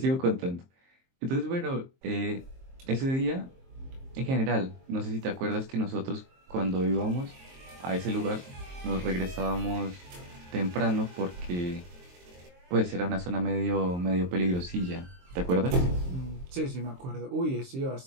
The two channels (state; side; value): late; left; 23 ms